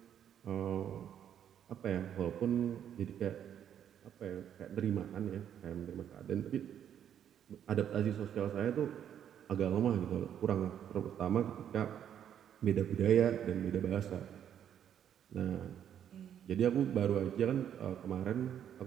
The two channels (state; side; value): quieter; left; 9.5 dB